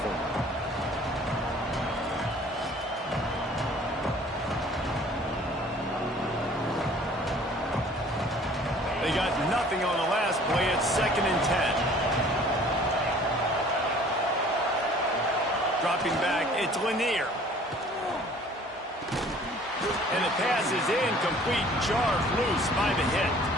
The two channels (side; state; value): both; normal; correlation 0.52